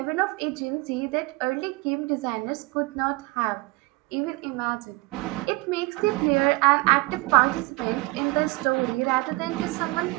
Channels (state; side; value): quieter; left; 24.2 dB